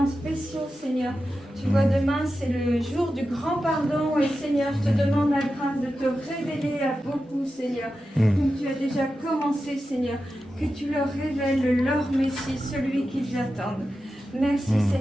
spéciaux, Seigneur. Tu vois, demain, c'est le jour du grand pardon. Et Seigneur, je te demande la grâce de te révéler à beaucoup, Seigneur. Comme tu as déjà commencé, Seigneur. Que tu leur révèles leur Messie, celui qu'ils attendent. Merci,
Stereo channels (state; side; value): normal; both; correlation 0.91